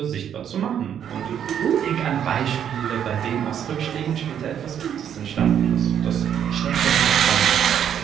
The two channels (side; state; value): left; quieter; 9.1 dB